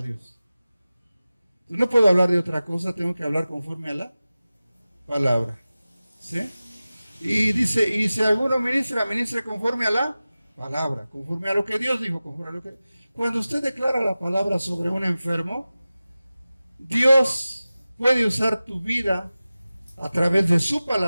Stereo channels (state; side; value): inverted; both; correlation -0.96